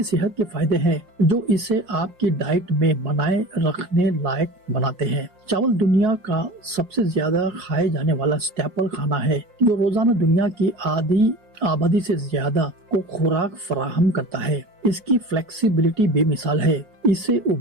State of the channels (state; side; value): late; left; 5.6 ms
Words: सेहत के फायदे हैं जो इसे आपकी डाइट में बनाए रखने लायक बनाते हैं। चावल दुनिया का सबसे ज्यादा खाए जाने वाला स्टेपल खाना है, जो रोजाना दुनिया की आधी आबादी से ज्यादा को खुराक फराहम करता है। इसकी फ्लेक्सिबिलिटी बेमिसाल है। इसे